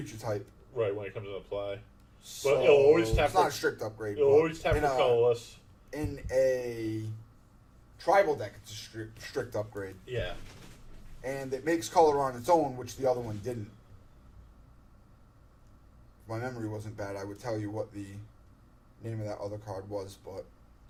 type. Right, when it comes into play. So But it'll always tap it's not a strict upgrade. It'll but always tap for colorless. In a tribal deck, it's a strict upgrade. Yeah. And it makes color on its own, which the other one didn't. If my memory wasn't bad, I would tell you what the name of that other card was, but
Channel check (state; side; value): identical; both; correlation 1.00